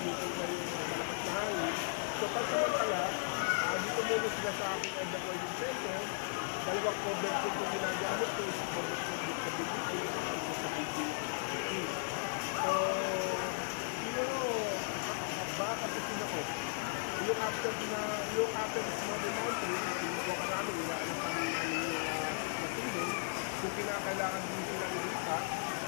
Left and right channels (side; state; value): right; silent; digital silence